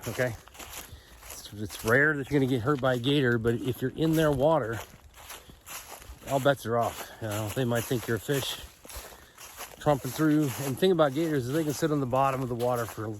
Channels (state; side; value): identical; both; correlation 1.00